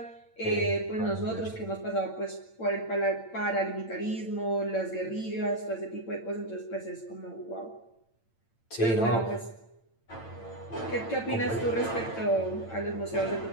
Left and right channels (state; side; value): late; right; 8.9 ms